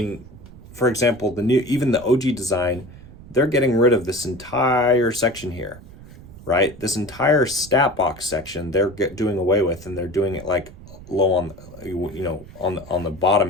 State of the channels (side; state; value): right; noise; rumble, 18 dB below the sound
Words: for example, even the OG design, they're getting rid of this entire section here, right? This entire stat box section they're doing away with, and they're doing it like low on, on the